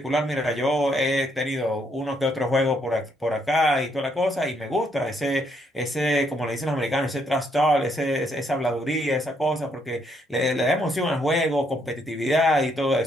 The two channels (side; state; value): both; normal; correlation 0.73